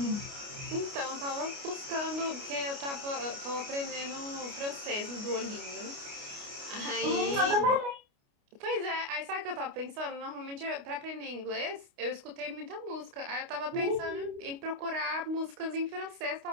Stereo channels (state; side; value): late; left; 29 ms